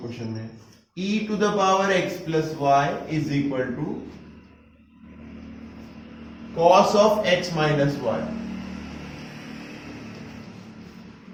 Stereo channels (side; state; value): both; identical; correlation 1.00